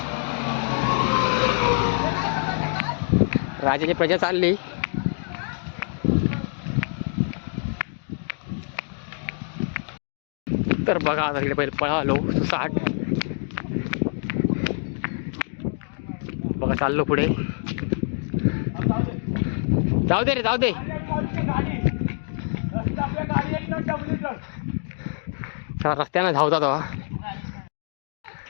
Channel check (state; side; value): silent; right; 59 dB below the other